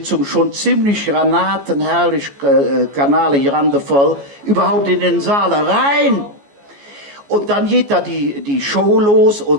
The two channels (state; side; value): late; left; 14 ms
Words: schon ziemlich granatenherrlich, kanalig randevoll, überhaupt in den Saal rein. Und dann geht da die Show los